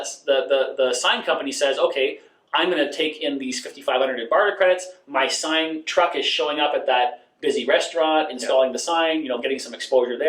the sign company says, okay, I'm going to take in these 5,500 in barter credits. My sign truck is showing up at that busy restaurant, installing the sign, getting some exposure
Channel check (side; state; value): both; identical; correlation 1.00